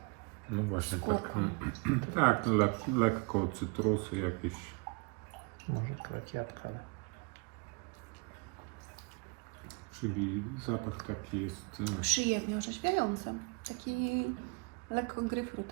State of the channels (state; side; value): quieter; left; 31.5 dB